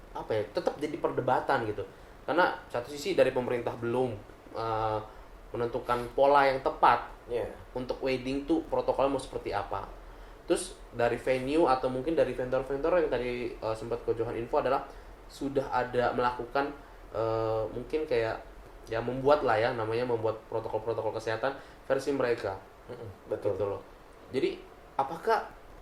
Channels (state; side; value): identical; both; correlation 1.00